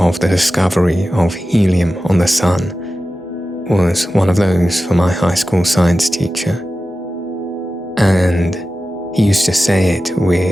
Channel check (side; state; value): both; normal; correlation 0.94